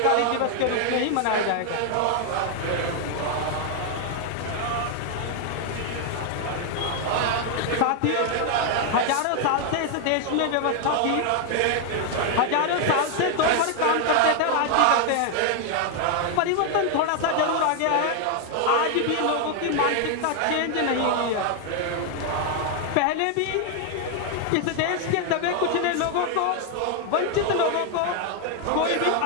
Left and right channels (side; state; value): both; different; correlation 0.00